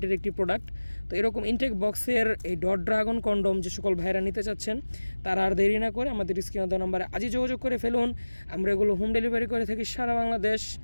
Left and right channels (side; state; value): both; inverted; correlation -1.00